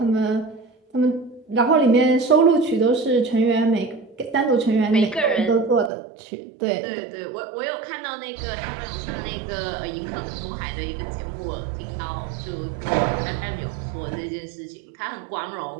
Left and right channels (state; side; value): drops out; left; at 5.9 s